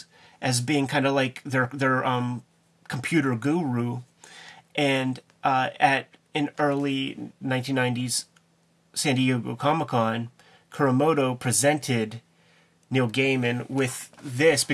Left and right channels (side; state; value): both; identical; correlation 1.00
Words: as being kind of like their computer guru. And in early 1990s San Diego Comic-Con, Kuramoto presented Neil Gaiman with this